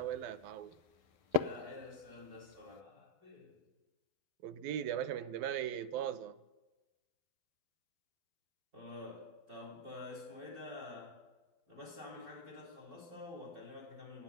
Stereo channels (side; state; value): left; late; 12 ms